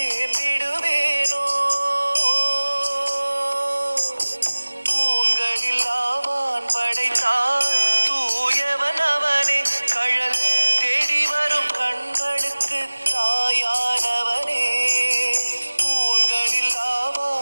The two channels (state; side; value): inverted; both; correlation -1.00